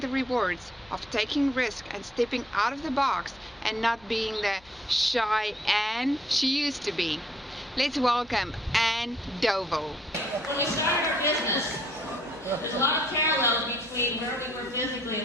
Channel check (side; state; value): left; noise; hum, 27 dB below the sound